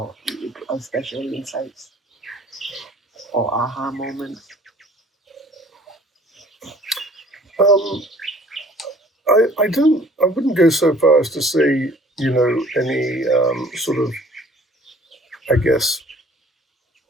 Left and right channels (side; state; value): both; normal; correlation 0.53